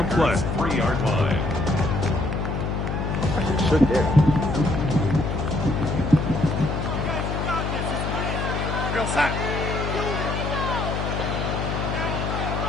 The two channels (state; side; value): noise; left; hum, 2 dB below the sound